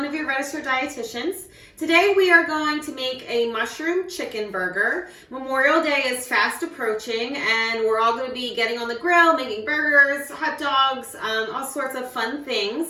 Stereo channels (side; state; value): both; identical; correlation 1.00